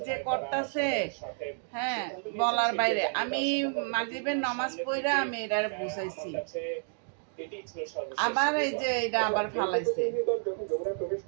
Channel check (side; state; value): left; silent; digital silence